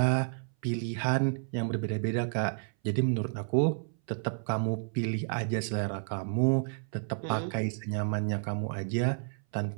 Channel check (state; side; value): silent; left; 57 dB below the other